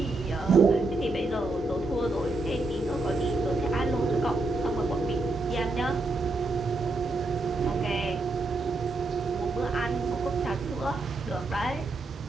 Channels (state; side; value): quieter; left; 3.1 dB